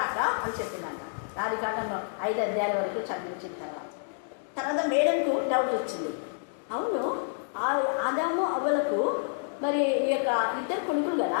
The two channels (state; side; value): silent; right; digital silence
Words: అని చెప్పినాక ఆదికాండం 5 అధ్యాయాల వరకు చదివించిన తర్వాత మేడంకు డౌట్ వచ్చింది. అవును, ఆదాము అవ్వలకు మరి ఈ యొక్క 2 కొడుకులు కదా,